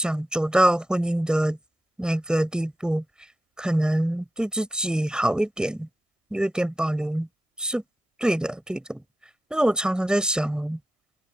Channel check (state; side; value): normal; both; correlation 0.91